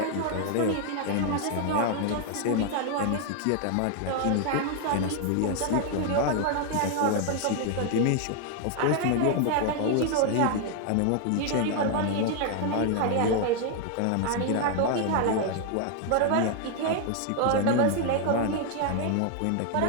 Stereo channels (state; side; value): different; both; correlation 0.00